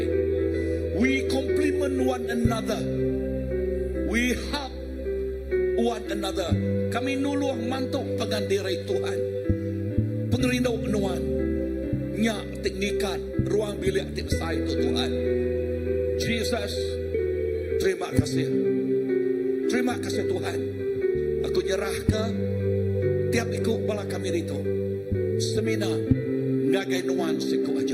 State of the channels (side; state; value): both; identical; correlation 1.00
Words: We complement one another. We help one another. Kami nuluh mantuk pengandirai Tuhan. Pengerindau nuan. Nyak teknikat ruang bilik tipsai itu Tuhan. Jesus, terima kasih. Terima kasih Tuhan. Aku nyerah ke tiap ikut bala kami itu. Seminar ngagai nuan siku